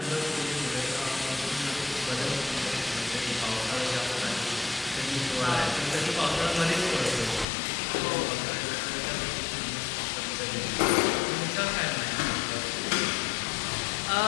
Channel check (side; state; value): right; drops out; at 7.5 s